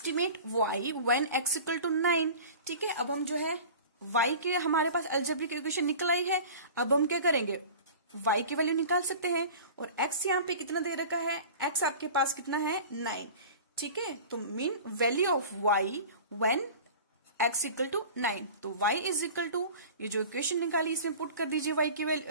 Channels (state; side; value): inverted; both; correlation -0.38